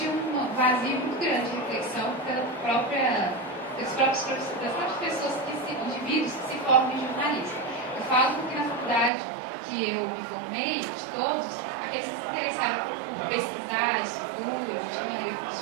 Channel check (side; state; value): left; drops out; at 9.1 s